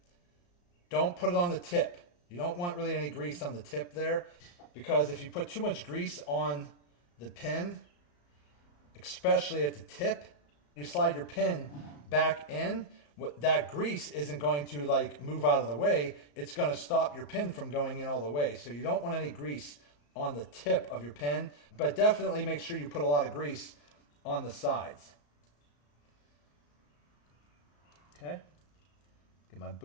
Don't put it on the tip. You don't want really any grease on the tip there, because if you put too much grease on the pin, especially at the tip, you slide your pin back in, that grease isn't going to like move out of the way. It's going to stop your pin from going in all the way. So you don't want any grease on the tip of your pin, but definitely make sure you put a lot of grease on the sides. Okay, get my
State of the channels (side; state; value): right; late; 34 ms